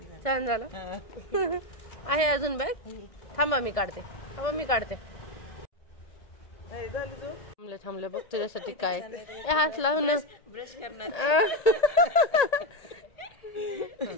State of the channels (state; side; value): late; right; 1.6 ms